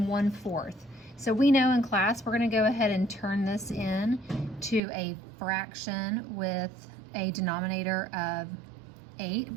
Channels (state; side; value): drops out; left; at 4.8 s